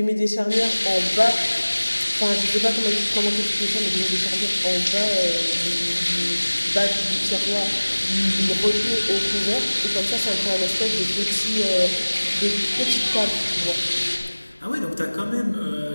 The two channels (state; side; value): inverted; both; correlation -1.00